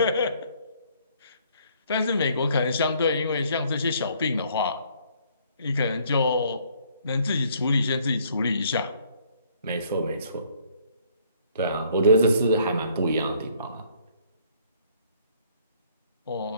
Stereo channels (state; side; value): inverted; both; correlation -0.63